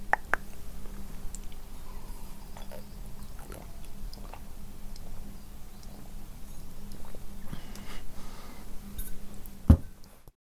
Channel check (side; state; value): both; identical; correlation 1.00